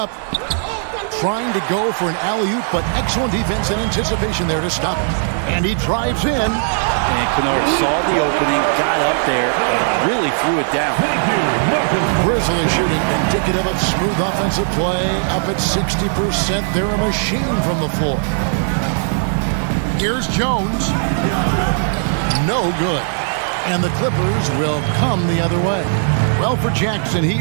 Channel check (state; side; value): silent; left; digital silence